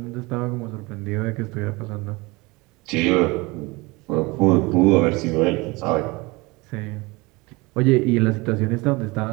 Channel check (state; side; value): quieter; left; 24.2 dB